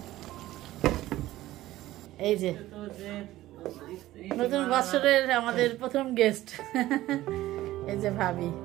এই যে নতুন বছরের আমাদের প্রথম গেস্ট, এই যে ভাবি।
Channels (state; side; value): quieter; left; 15.7 dB